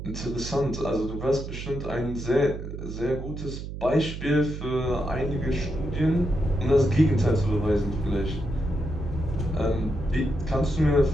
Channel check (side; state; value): right; noise; hum, 8 dB below the sound